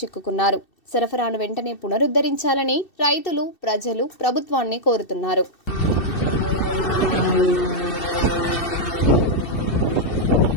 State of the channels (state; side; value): late; right; 2.7 ms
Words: సరఫరాను వెంటనే పునరుద్ధరించాలని రైతులు, ప్రజలు ప్రభుత్వాన్ని కోరుతున్నారు.